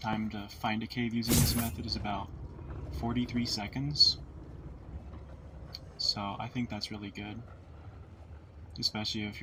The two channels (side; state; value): both; identical; correlation 1.00